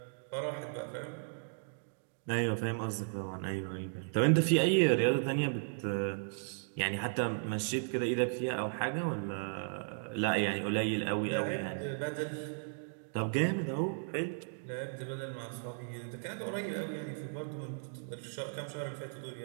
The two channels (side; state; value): left; silent; digital silence